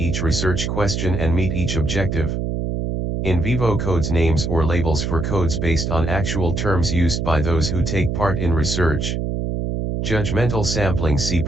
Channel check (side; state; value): right; noise; hum, 1 dB below the sound